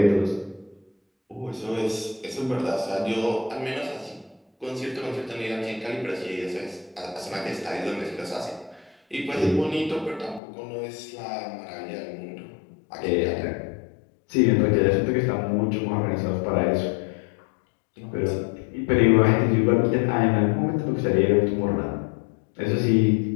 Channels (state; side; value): drops out; right; at 10.4 s